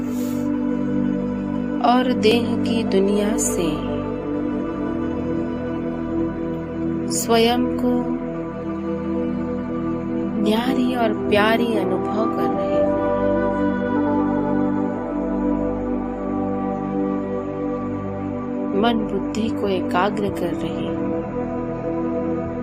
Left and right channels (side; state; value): both; identical; correlation 1.00